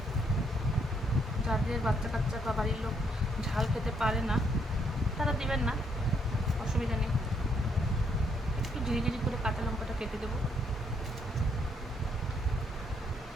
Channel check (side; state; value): both; normal; correlation 0.72